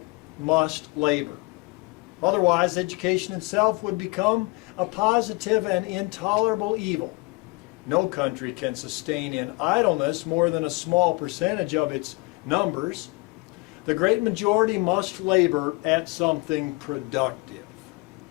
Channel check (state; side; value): quieter; right; 26.3 dB